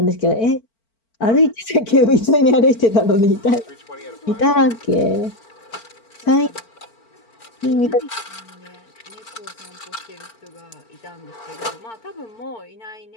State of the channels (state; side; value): late; right; 4.5 ms